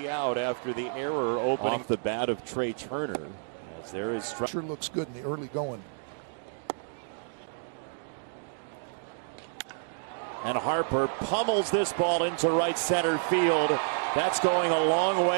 out after the error opening off the bat of Trey Turner. As there is sure looks good in the early going. And Harper pummels this ball into right center field. That's going a long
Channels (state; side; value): silent; left; digital silence